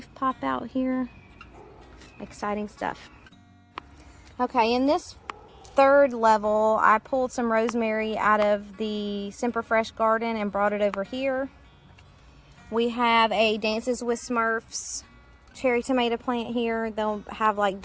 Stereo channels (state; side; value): identical; both; correlation 1.00